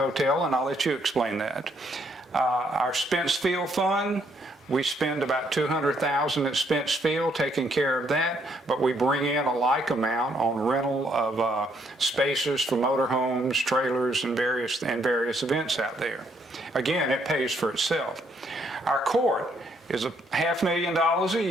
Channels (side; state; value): both; normal; correlation 0.70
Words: and I'll let you explain that. Our Spence Field Fund, we spend about $200,000 at Spence Field taking care of that, but we bring in a like amount on rental of spaces for motorhomes, trailers, and various events out there. Again, it pays for itself. Our court is $500,000 a